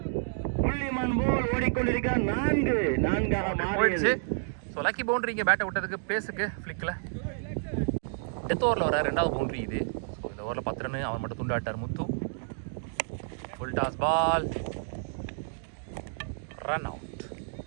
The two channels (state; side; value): silent; left; digital silence